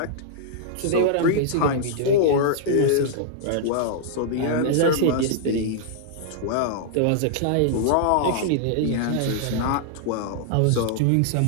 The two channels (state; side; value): different; both; correlation -0.01